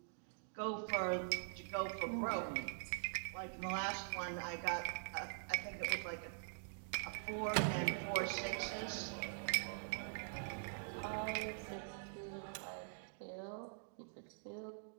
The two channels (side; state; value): left; silent; digital silence